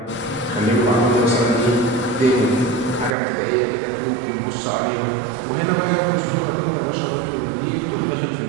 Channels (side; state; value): left; drops out; at 3.2 s